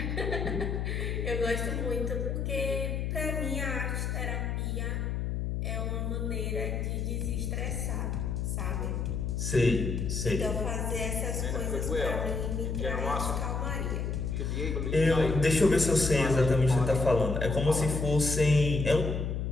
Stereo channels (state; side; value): noise; left; hum, 1 dB below the sound